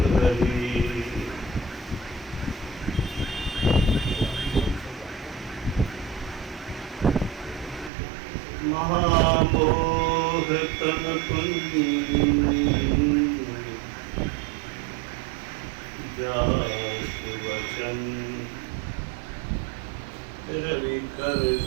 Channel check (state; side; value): drops out; left; at 7.9 s